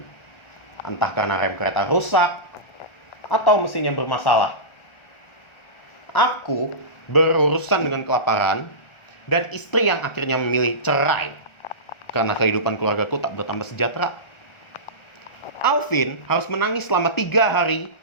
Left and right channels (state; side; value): late; right; 1.4 ms